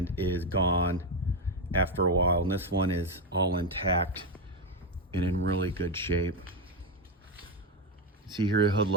is gone after a while. And this one is all intact and in really good shape. See here, the hood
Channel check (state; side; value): normal; both; correlation 0.09